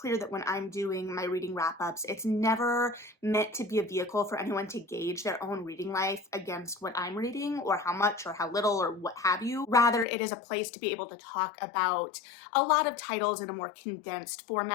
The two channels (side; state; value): right; drops out; at 10.1 s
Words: that when I'm doing my reading wrap-ups, it's never meant to be a vehicle for anyone to gauge their own reading life against what I'm reading or how much or how little or what have you. Rather, it is a place to be able to talk about a lot of titles in a more condensed